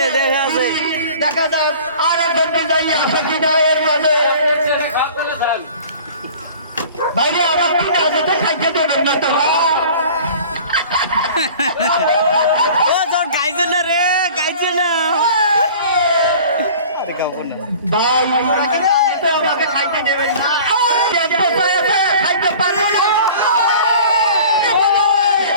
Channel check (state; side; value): inverted; both; correlation -0.44